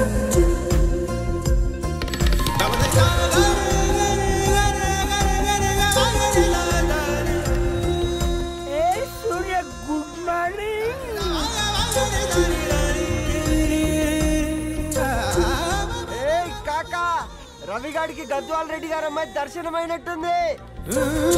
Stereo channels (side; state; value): both; identical; correlation 1.00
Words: రవిగాడికి గద్వాల్ రెడ్డి గారు అమ్మాయి దర్శనమైనట్టుంది.